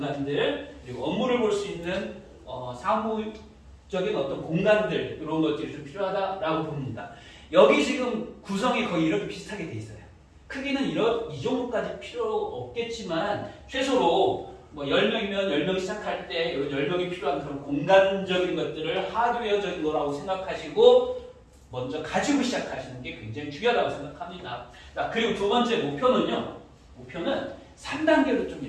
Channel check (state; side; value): identical; both; correlation 1.00